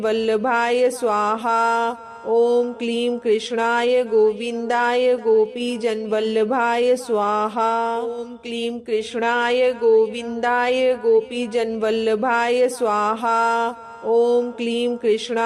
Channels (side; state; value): both; identical; correlation 1.00